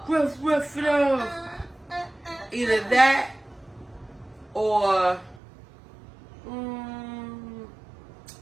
Rough it off. Either that or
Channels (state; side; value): drops out; left; at 5.4 s